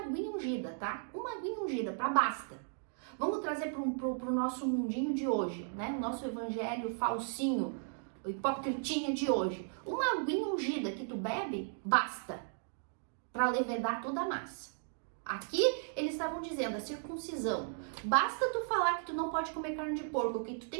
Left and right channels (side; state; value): left; silent; digital silence